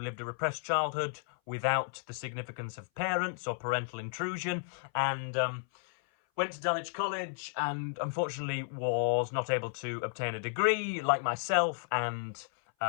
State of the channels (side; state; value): right; silent; 56 dB below the other